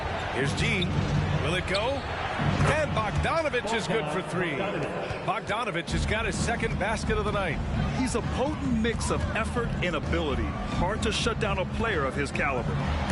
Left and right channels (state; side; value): identical; both; correlation 1.00